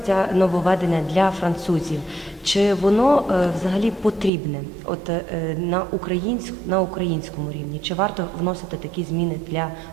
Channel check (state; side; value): drops out; left; at 4.3 s